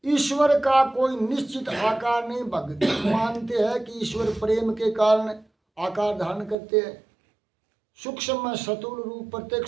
ईश्वर का कोई निश्चित आकार नहीं। भगत मानते हैं कि ईश्वर प्रेम के कारण आकार धारण करते हैं। सूक्ष्म में स्थूल रूप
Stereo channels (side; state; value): left; drops out; at 6.6 s